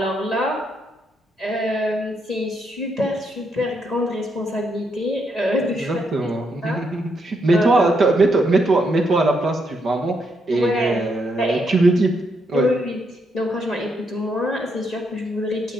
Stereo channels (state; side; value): normal; both; correlation 0.78